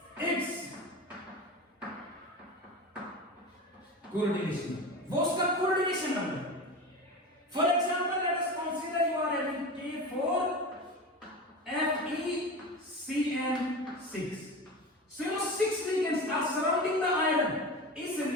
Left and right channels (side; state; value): both; normal; correlation 0.28